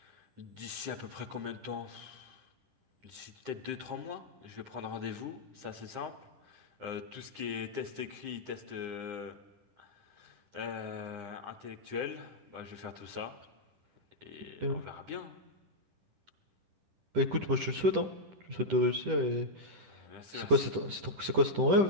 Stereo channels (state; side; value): late; left; 10 ms